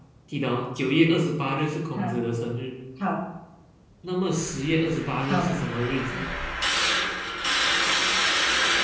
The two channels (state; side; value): identical; both; correlation 1.00